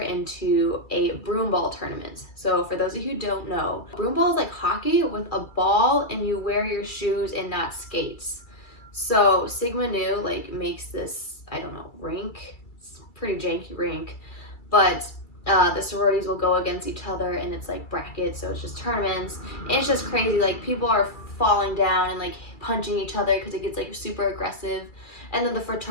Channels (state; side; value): late; right; 2.2 ms